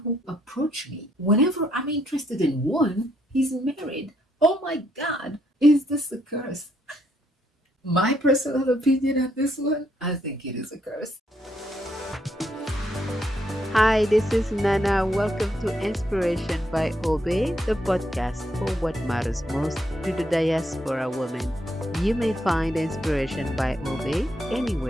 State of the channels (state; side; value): normal; both; correlation 0.74